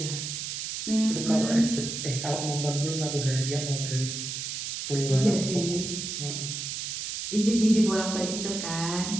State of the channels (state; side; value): noise; right; hiss, 5 dB below the sound